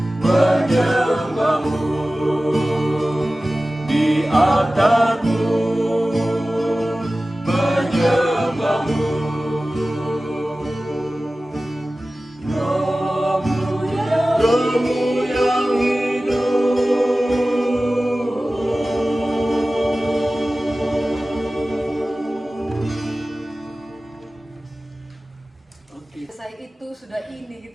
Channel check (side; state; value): both; normal; correlation 0.96